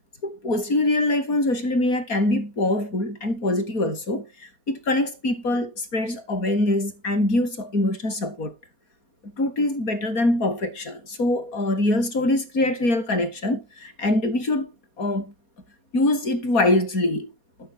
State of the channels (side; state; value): right; late; 4.2 ms